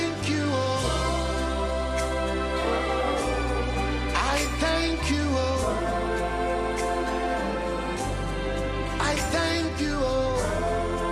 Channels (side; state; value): both; identical; correlation 1.00